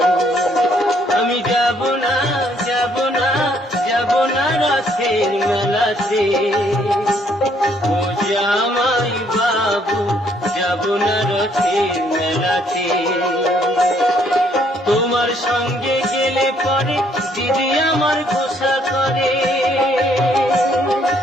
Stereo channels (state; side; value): normal; both; correlation 0.67